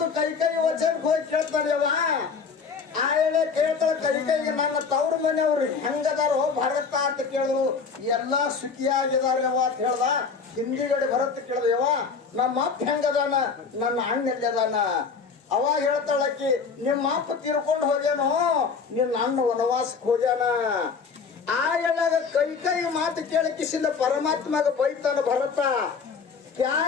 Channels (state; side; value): quieter; right; 5.4 dB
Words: ಕೈ ವಚನಕ್ಕೆ ಹೋಗಿ ಕೇಳ್ತಾನೆವ. ಆ ಹೇಳಿ ಕೇಳ್ತಾಳ ಕೈಗೆ ನನ್ನ ತವ್ರ ಮನೆಯವ್ರು ಹೆಂಗದಾರೋ ಭರತ ಅಂತ ಕೇಳಿದ್ರು. ಎಲ್ಲಾ ಸುಖಿಯಾಗಿದಾರವ ಅಂತ ಹೇಳ್ದ. ಹಿಂದಿಗಡೆ ಭರತ ಕೇಳಿದೆವ, ನಮ್ಮ ಅಪ್ಪ ಹೆಂಗದಾನ, ನನ್ನ ಅಣ್ಣ ಎಲ್ಲಿದಾನ. ಅವಾಗ ಹೇಳ್ತಾಳಕ್ಕಿ, ನಿಮ್ಮ ಅಪ್ಪ ತೀರ್ಕೊಂಡು ಹೋಗ್ಯಾನೋ, ನಿನ್ನ ಅಣ್ಣ ವನವಾಸಕ್ಕೆ ಹೋಗ್ಯಾನ. ಆ ಹೇಳಾಗ ಕೈ ಮಾತು ಕೇಳಕಿಸಿಂದ ಪರಮಾತ್ಮಗ ಬೈತಾನ ಭರತ.